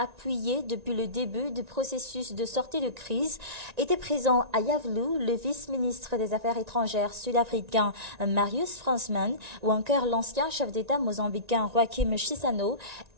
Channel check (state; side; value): late; left; 1.9 ms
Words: depuis le début du processus de sortie de crise était présent à Iavlou, le vice-ministre des Affaires étrangères sud-africain Marius Fransman ou encore l'ancien chef d'État mozambicain Joaquim Chissano